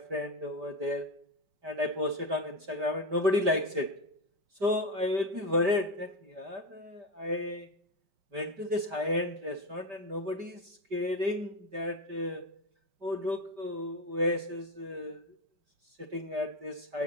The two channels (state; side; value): late; left; 5.0 ms